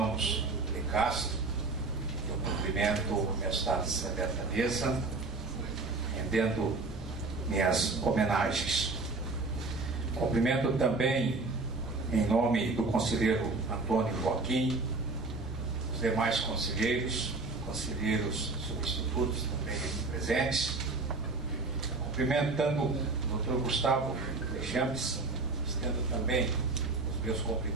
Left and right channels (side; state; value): left; quieter; 3.6 dB